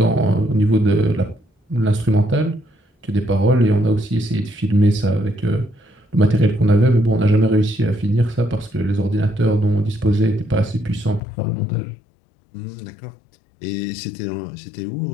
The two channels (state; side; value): drops out; right; at 11.2 s